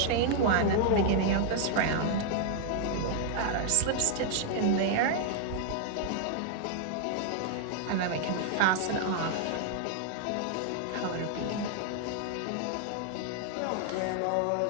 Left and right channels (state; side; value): different; both; correlation 0.00